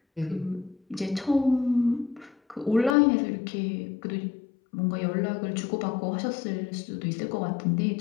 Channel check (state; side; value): drops out; right; at 3.0 s